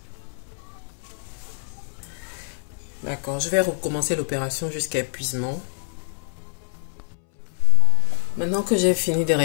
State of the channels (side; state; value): right; silent; 62 dB below the other